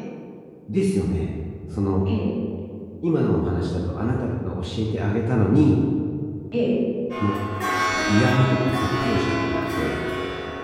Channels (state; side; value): identical; both; correlation 1.00